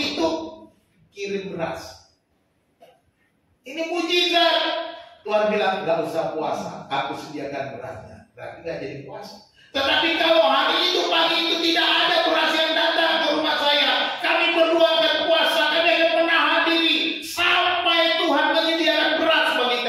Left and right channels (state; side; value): identical; both; correlation 1.00